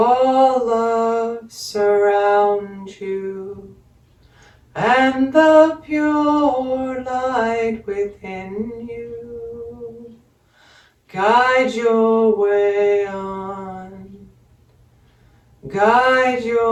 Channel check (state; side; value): identical; both; correlation 1.00